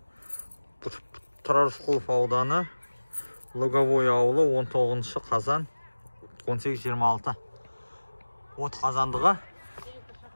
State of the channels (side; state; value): both; inverted; correlation -1.00